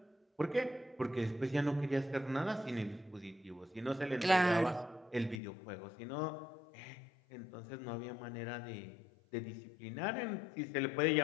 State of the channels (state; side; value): drops out; right; at 5.4 s